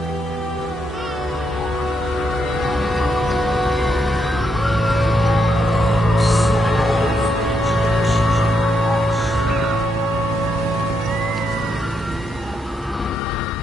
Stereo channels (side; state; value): both; normal; correlation 0.79